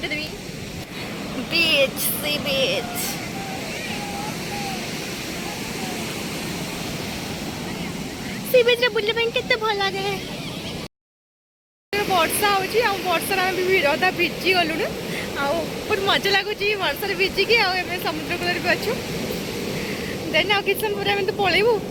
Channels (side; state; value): both; identical; correlation 1.00